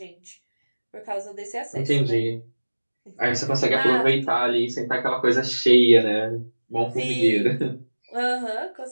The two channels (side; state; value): both; inverted; correlation -1.00